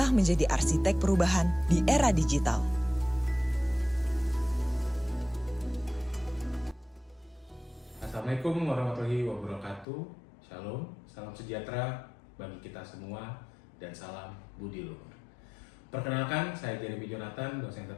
menjadi arsitek perubahan di era digital. Assalamualaikum warahmatullahi wabarakatuh. Shalom, salam sejahtera bagi kita semua dan salam budi luhur. Perkenalkan, saya Jeremy Jonathan, dosen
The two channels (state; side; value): drops out; right; at 9.9 s